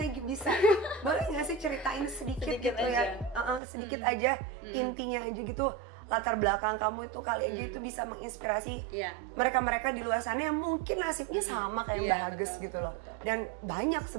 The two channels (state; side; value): drops out; left; at 3.6 s